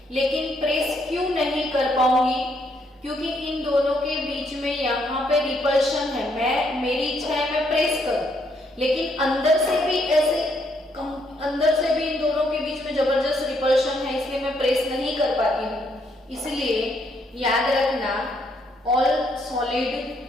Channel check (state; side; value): normal; both; correlation 0.72